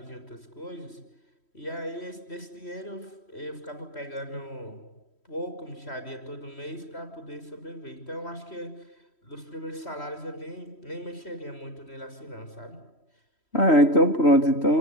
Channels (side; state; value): right; late; 3.1 ms